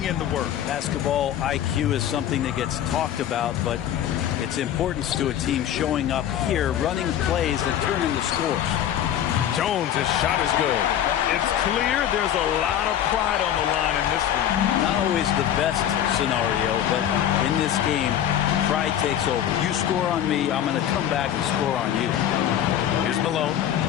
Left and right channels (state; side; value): quieter; right; 10.6 dB